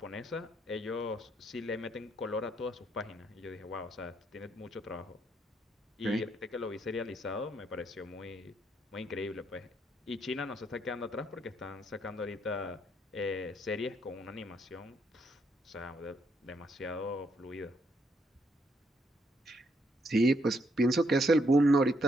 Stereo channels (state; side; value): normal; both; correlation 0.74